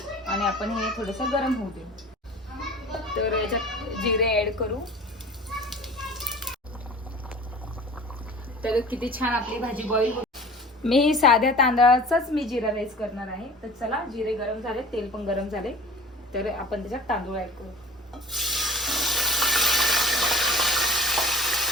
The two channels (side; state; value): both; normal; correlation 0.42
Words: आणि आपण हे थोडस गरम होऊ दे. तर याच्यात जिरे ऍड करू. तर किती छान आपली भाजी बॉईल होते. मी साध्या तांदळाचाच मी जिरा राईस करणार आहे. तर चला, जिरे गरम झाले, तेल पण गरम झाले, तर आपण त्याच्यात तांदूळ ऍड करू.